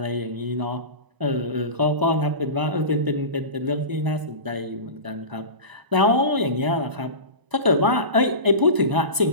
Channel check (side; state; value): left; late; 1.0 ms